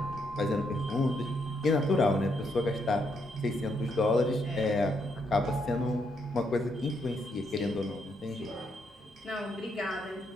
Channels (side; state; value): both; normal; correlation 0.76